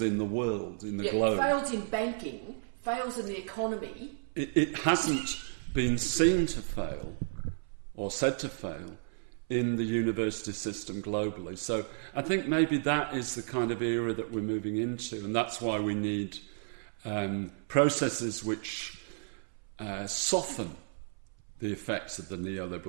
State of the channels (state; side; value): silent; left; 56 dB below the other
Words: in the world, in the globe... fails in banking, fails in the economy... It hasn't been seen to fail, or said to fail, in the university system globally. So I think maybe that is the kind of era that we're moving into, and that's why we need processes which soften the effects of the